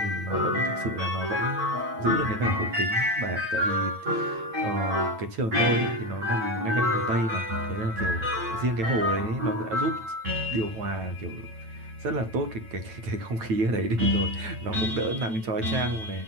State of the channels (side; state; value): left; late; 9.0 ms